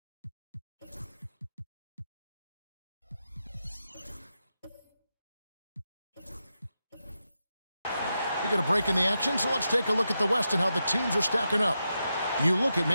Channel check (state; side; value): inverted; both; correlation -0.88